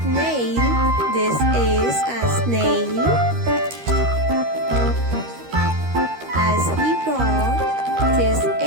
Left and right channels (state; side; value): late; left; 13 ms